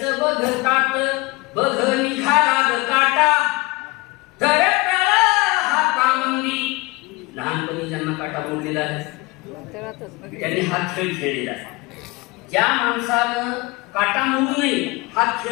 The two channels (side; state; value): right; quieter; 23.5 dB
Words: बघतात. बघ निघाला ग काटा धरत हातामंदी. लहानपणी ज्यांना काटा मोडलेला आहे त्यांनी हा खेळ खेळलेला आहे. ज्या माणसानं काटा मोडू नये हा